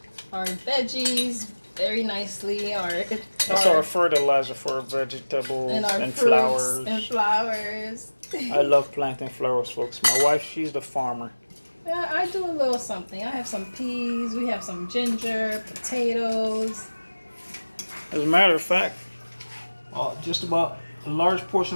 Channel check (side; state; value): both; inverted; correlation -1.00